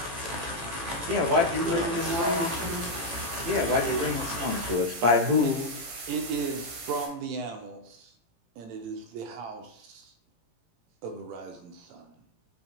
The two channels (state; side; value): late; left; 18 ms